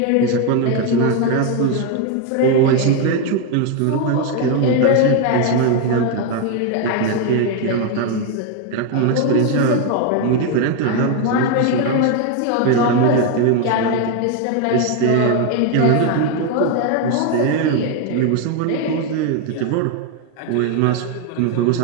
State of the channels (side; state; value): both; different; correlation 0.01